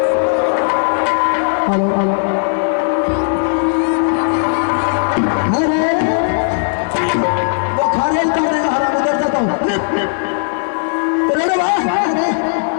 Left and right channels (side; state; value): right; silent; digital silence